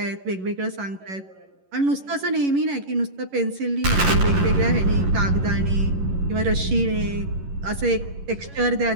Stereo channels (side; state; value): left; late; 11 ms